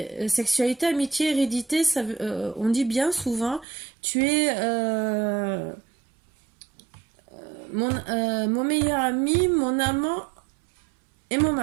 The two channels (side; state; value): left; drops out; at 3.7 s